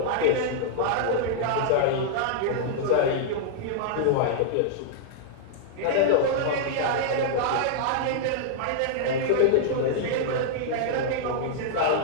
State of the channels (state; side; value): different; both; correlation -0.01